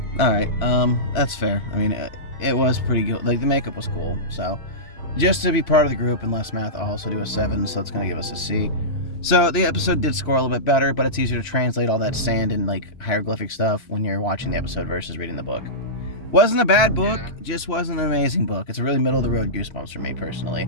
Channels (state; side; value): late; right; 3.3 ms